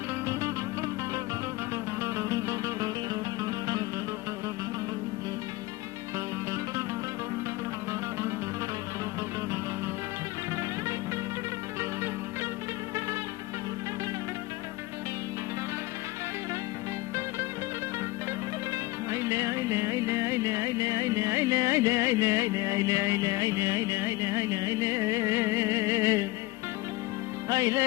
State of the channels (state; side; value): quieter; right; 20.2 dB